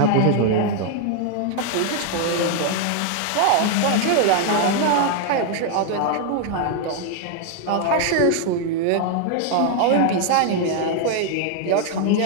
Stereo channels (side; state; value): both; different; correlation 0.00